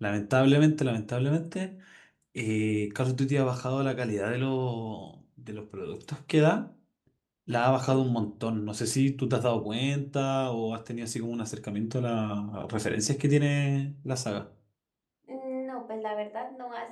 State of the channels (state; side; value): identical; both; correlation 1.00